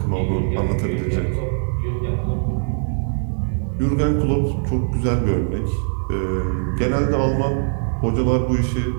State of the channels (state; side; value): silent; left; 65 dB below the other